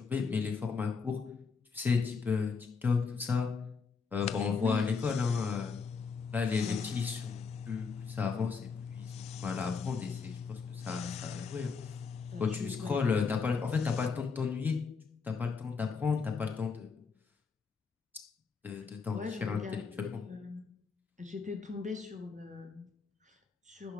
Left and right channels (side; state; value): right; quieter; 5.2 dB